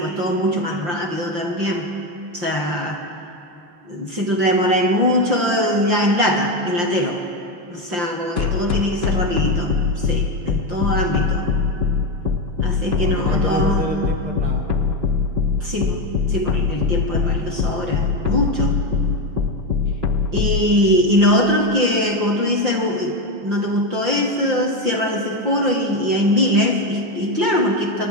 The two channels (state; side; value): late; left; 5.7 ms